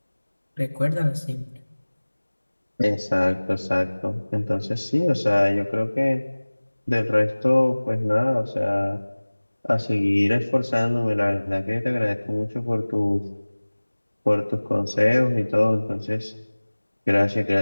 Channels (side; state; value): both; inverted; correlation -1.00